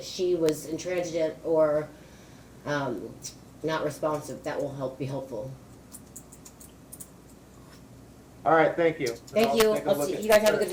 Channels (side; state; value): both; identical; correlation 1.00